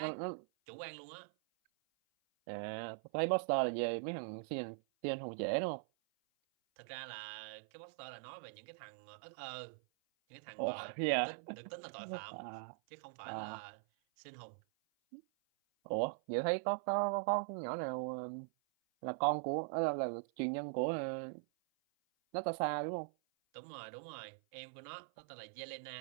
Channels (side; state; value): left; silent; 50 dB below the other